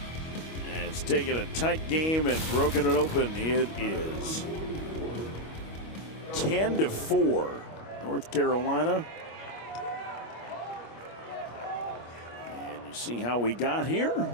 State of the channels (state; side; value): late; right; 25 ms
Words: And it's taken a tight game and broken it open. It is 10-4 North Carolina. See how we got here,